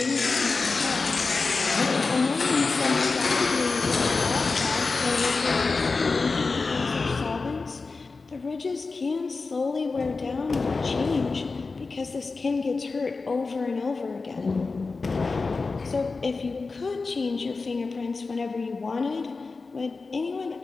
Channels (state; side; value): quieter; right; 4.1 dB